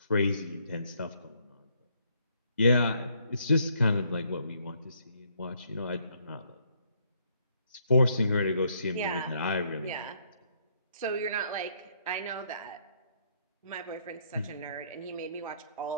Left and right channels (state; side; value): inverted; both; correlation -0.70